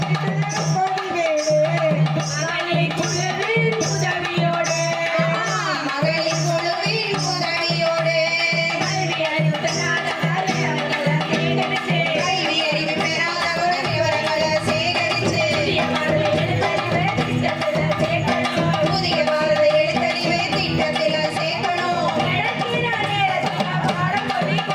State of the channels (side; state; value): both; identical; correlation 1.00